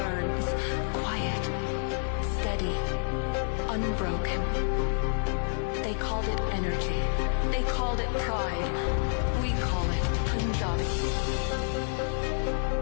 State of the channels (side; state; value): right; silent; 59 dB below the other